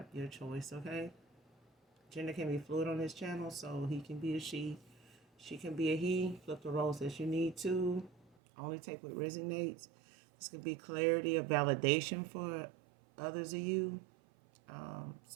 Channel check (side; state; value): left; drops out; at 8.3 s